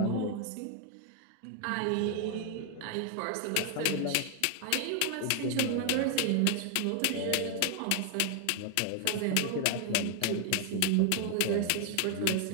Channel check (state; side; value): different; both; correlation 0.00